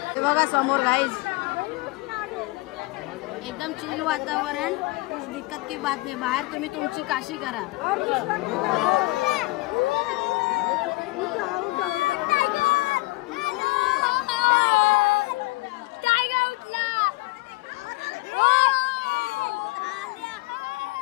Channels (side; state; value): right; quieter; 22.0 dB